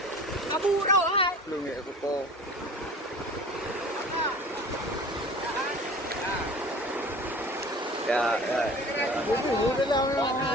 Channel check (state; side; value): normal; both; correlation 0.41